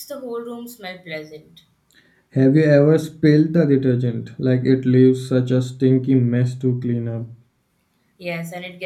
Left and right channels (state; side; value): identical; both; correlation 1.00